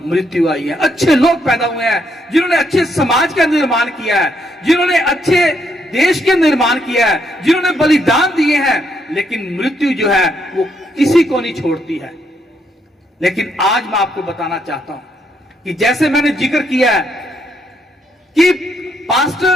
मृत्यु आई है। अच्छे लोग पैदा हुए हैं जिन्होंने अच्छे समाज का निर्माण किया है, जिन्होंने अच्छे देश के निर्माण किया है, जिन्होंने बलिदान दिए हैं, लेकिन मृत्यु जो है वो किसी को नहीं छोड़ती है। लेकिन आज मैं आपको बताना चाहता हूं कि जैसे मैंने जिक्र किया है कि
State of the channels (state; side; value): normal; both; correlation 0.75